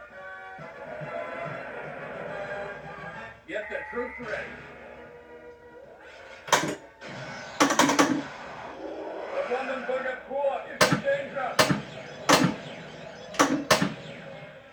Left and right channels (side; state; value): both; identical; correlation 1.00